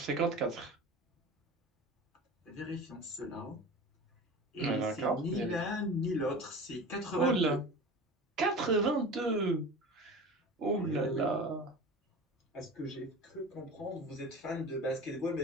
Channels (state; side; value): normal; both; correlation 0.34